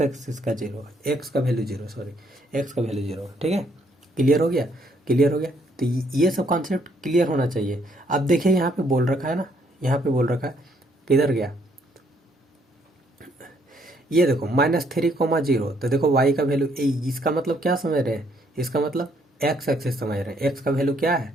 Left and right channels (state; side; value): normal; both; correlation 0.68